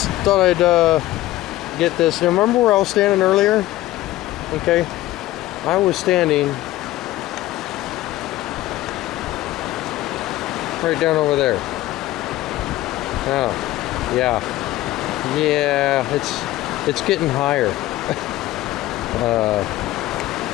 thought I'd get this. Now, remember where I was standing earlier? Okay, I was standing right down over there. Oh, yeah, it's getting higher.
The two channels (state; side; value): quieter; right; 16.1 dB